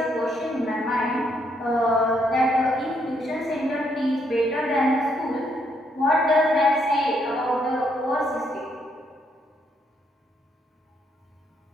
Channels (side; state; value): both; normal; correlation 0.73